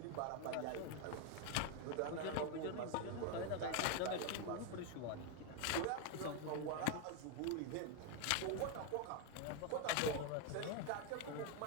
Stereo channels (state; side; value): different; both; correlation 0.01